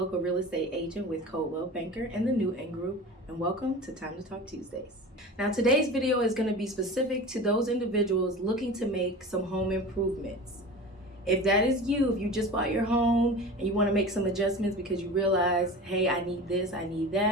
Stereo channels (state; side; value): normal; both; correlation 0.34